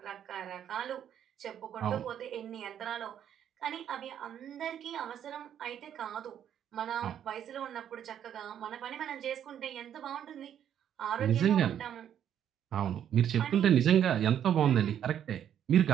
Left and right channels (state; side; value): quieter; left; 9.7 dB